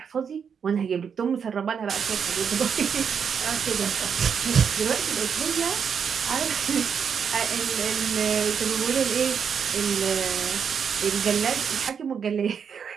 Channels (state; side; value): quieter; left; 7.0 dB